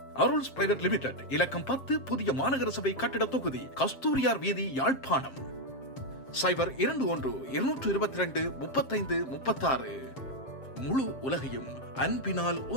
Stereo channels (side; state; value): right; late; 7.5 ms